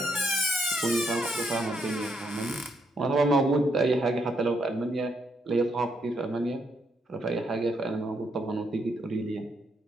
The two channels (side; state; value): both; normal; correlation 0.76